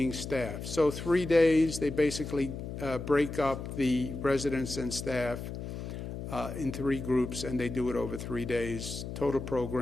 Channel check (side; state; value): left; noise; hum, 7 dB below the sound